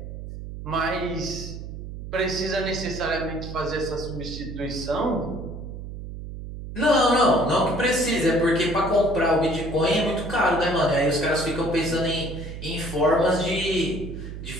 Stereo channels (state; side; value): noise; right; hum, 9 dB below the sound